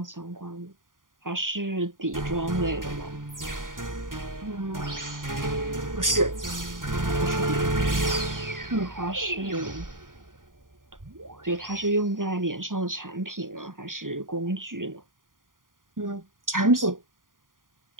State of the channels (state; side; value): late; left; 0.90 ms